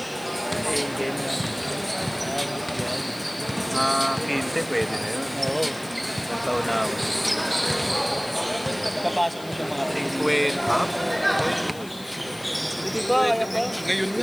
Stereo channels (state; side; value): noise; left; hiss, 19 dB below the sound